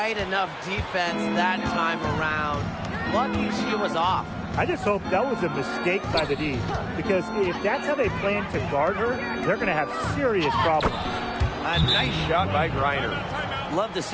enough defense that time around. Lucky she was off. I just hope that was a mistake by the D, because if that's how they plan to guard her, they're going to have serious problems. A nice shot by Griner. Love to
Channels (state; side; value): identical; both; correlation 1.00